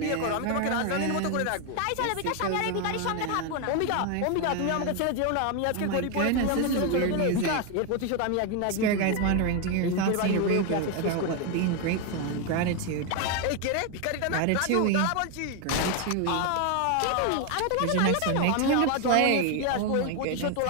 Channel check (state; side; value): different; both; correlation 0.01